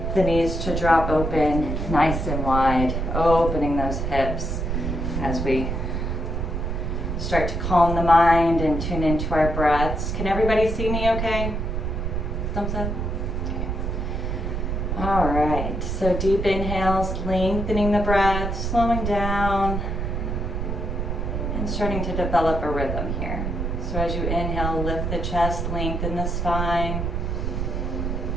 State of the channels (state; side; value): noise; right; rumble, 2 dB below the sound